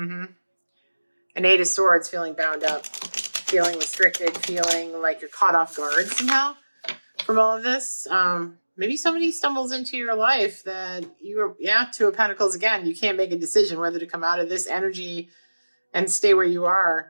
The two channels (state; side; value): inverted; both; correlation -1.00